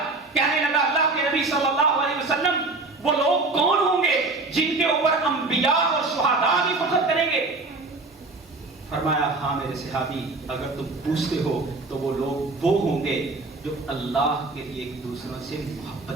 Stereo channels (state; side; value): quieter; left; 3.4 dB